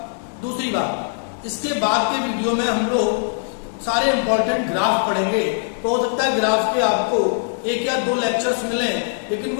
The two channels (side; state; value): right; silent; 57 dB below the other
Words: दूसरी बात, इसके बाद के वीडियो में हम लोग सारे इंपॉर्टेंट ग्राफ पढ़ेंगे। तो हो सकता है ग्राफ के आपको 1 या 2 लेक्चर्स मिले, लेकिन